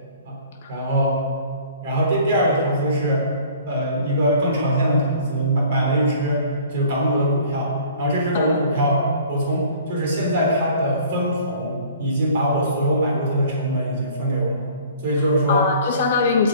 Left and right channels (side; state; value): both; inverted; correlation -0.51